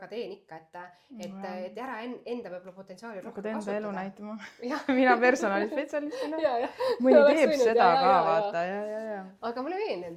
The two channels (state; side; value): identical; both; correlation 1.00